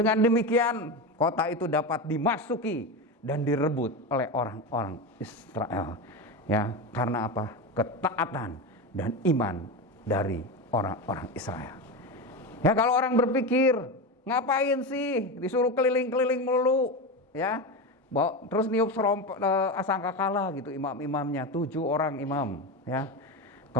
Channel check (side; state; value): both; normal; correlation 0.19